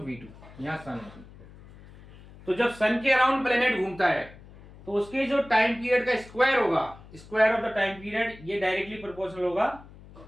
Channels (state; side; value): noise; left; hum, 20 dB below the sound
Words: यहाँ सन है। तो जब सन के अराउंड प्लेनेट घूमता है तो उसके जो टाइम पीरियड का स्क्वायर होगा, square of the time period, ये डायरेक्टली प्रोपोर्शनल होगा